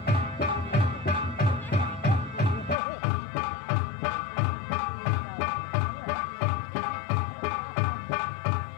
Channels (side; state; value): right; drops out; at 2.8 s